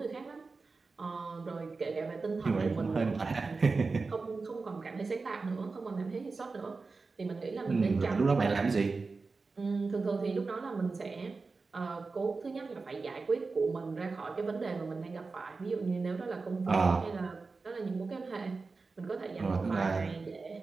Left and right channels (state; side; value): quieter; left; 4.1 dB